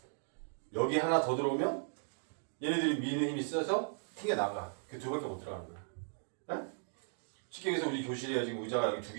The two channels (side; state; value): left; silent; digital silence